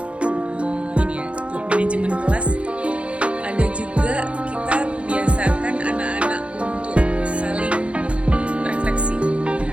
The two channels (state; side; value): late; left; 0.061 ms